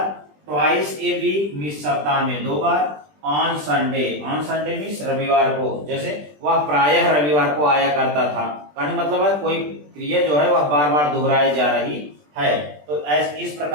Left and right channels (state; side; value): late; left; 20 ms